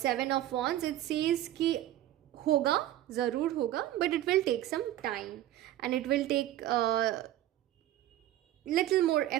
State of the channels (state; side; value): quieter; left; 13.7 dB